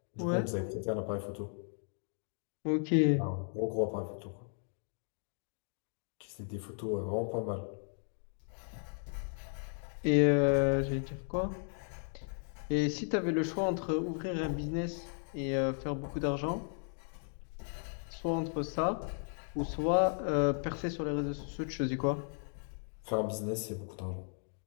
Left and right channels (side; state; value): right; silent; 54 dB below the other